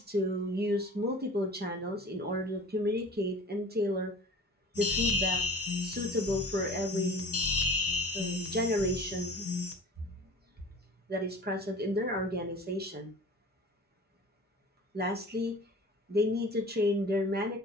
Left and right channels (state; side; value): normal; both; correlation 0.43